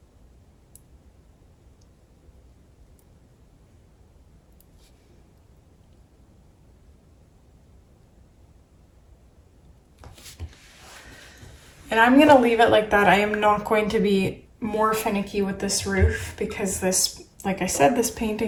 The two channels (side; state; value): both; identical; correlation 1.00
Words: and I'm gonna leave it like that. I am not going to be more finicky with this roof because this, like I said, this